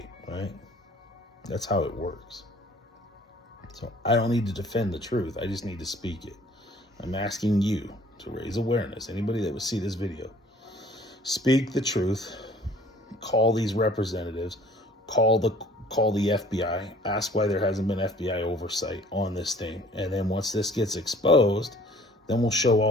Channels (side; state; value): both; normal; correlation 0.54